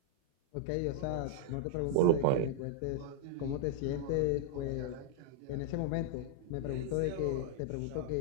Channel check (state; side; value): different; both; correlation -0.01